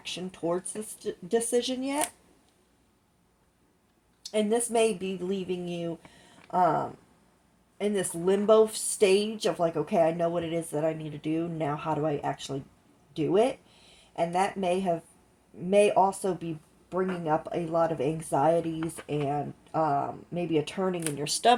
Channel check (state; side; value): identical; both; correlation 1.00